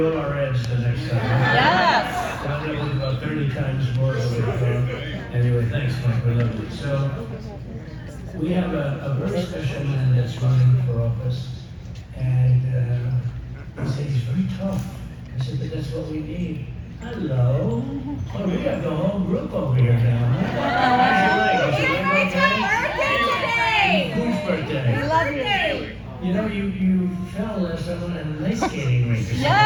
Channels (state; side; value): identical; both; correlation 1.00